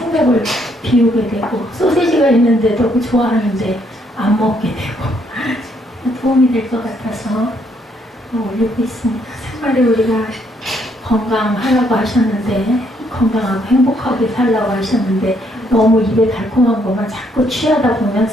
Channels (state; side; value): normal; both; correlation 0.71